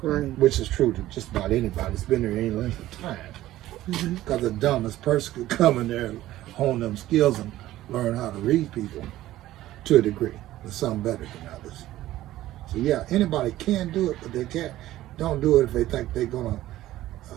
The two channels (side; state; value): left; quieter; 14.9 dB